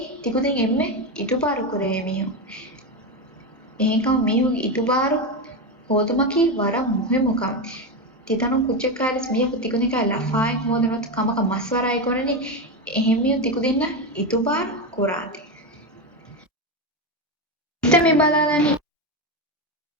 තිකුදින් එම්මේ ඉතුබාරු කරේ මියෝ එහෙකම මියෝ ඉතුබාරු හොදමකි වර මුහෙමුකම් තිතනු කුච්චකාරිස් මිය තිකුදින් කා ලෆායෙන් හොදන ත කමක මස්වරයි කරන්නේ එහෙමිය තිකුදින්න ඉතුබාරු කුරාති ඉතමි බලාලනි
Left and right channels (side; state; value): both; normal; correlation 0.13